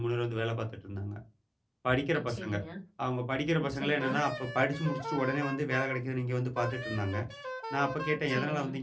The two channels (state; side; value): identical; both; correlation 1.00